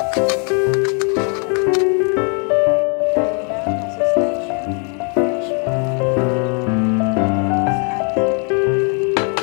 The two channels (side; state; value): right; quieter; 38.9 dB